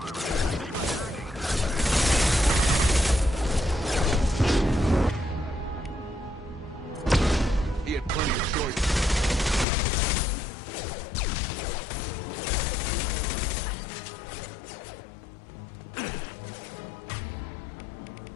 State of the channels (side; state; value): right; drops out; at 9.7 s